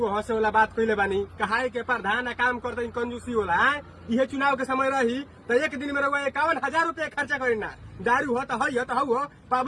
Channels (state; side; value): identical; both; correlation 1.00